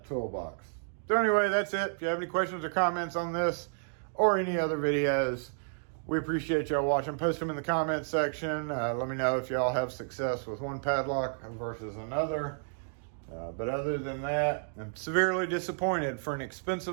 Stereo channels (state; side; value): silent; left; digital silence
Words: toolbox. So anyway, that's it. If you have any questions or comments on this or any other videos, We appreciate y'all watching. Post them in the comment section. Let me know if y'all have success with one padlock versus another. But other than that, I'm severely disappointed for an